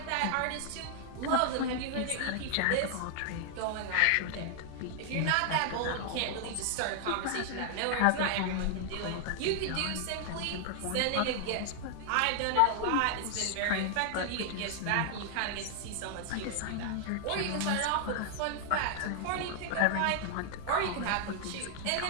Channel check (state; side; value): different; both; correlation 0.00